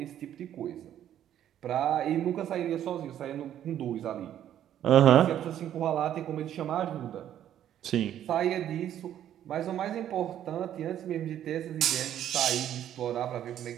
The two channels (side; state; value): left; quieter; 11.0 dB